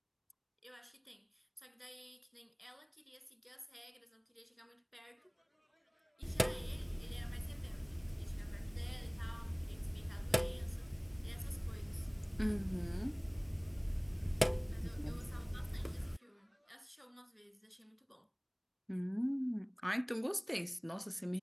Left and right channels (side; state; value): both; identical; correlation 1.00